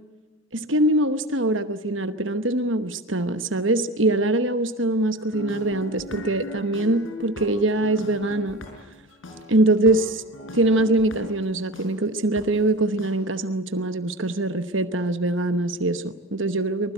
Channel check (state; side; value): normal; both; correlation 0.31